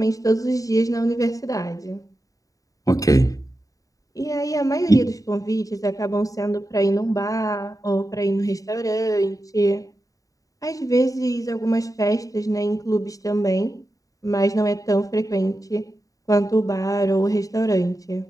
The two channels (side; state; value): right; late; 0.16 ms